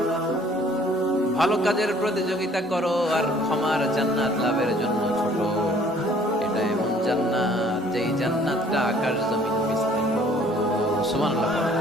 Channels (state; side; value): normal; both; correlation 0.57